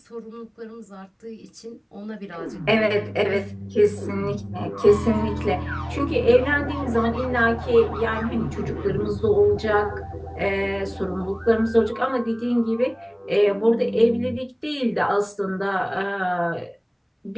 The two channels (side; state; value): both; identical; correlation 1.00